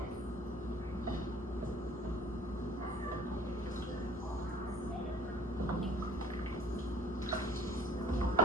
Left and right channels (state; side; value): normal; both; correlation 0.50